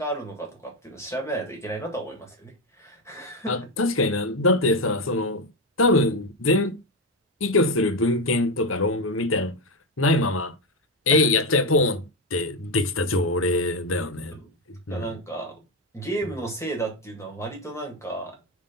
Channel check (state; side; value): normal; both; correlation 0.10